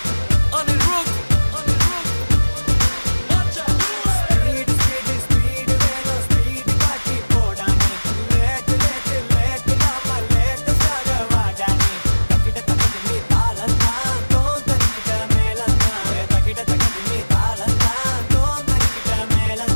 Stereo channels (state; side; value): inverted; both; correlation -1.00